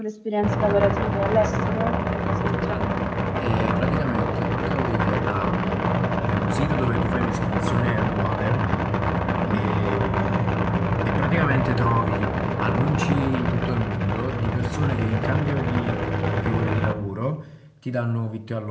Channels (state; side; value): identical; both; correlation 1.00